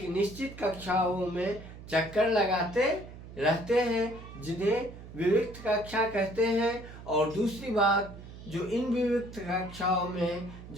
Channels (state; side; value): noise; right; hum, 15 dB below the sound